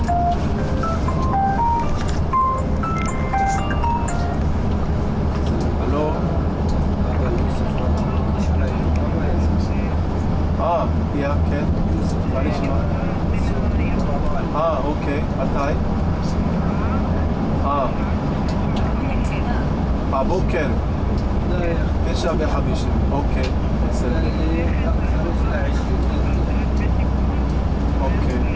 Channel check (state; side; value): identical; both; correlation 1.00